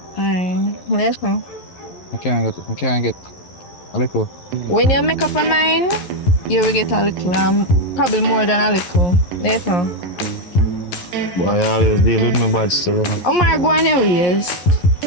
Alright, let's go. I can't get a little. When you make up your mind, you will get a little, probably more than a little. Later. Boy, I always deal with my bad still, you know. Omar, go on your ways.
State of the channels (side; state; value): right; late; 11 ms